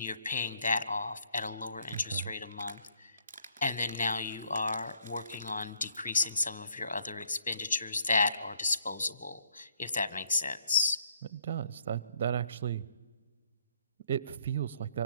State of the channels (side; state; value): both; inverted; correlation -0.65